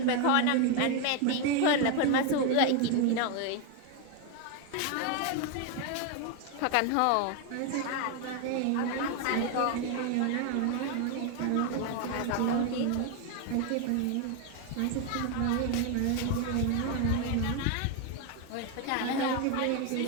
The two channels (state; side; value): different; both; correlation 0.01